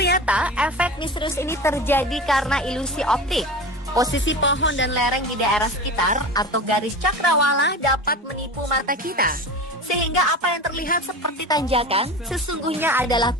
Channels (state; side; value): normal; both; correlation 0.31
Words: efek misterius ini terjadi karena ilusi optik. Posisi pohon dan lereng di daerah sekitar atau garis cakrawala dapat menipu mata kita. Sehingga apa yang terlihat seperti tanjakan sesungguhnya adalah